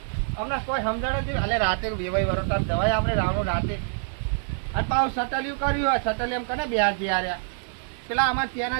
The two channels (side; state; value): left; silent; digital silence